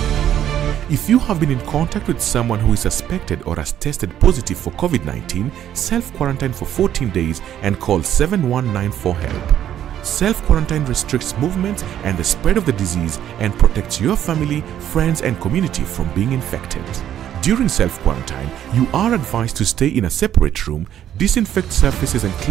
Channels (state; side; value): quieter; left; 10.8 dB